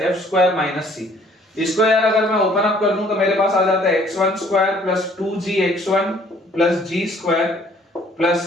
f square minus c। इसको यार अगर मैं ओपन अप कर दूं तो मेरे पास आ जाता है x1 square plus 2gx1 plus g square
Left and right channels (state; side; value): normal; both; correlation 0.59